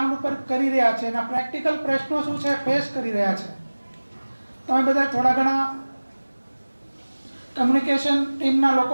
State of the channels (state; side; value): inverted; both; correlation -1.00